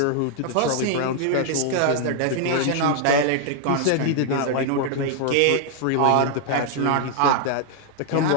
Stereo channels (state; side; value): different; both; correlation 0.00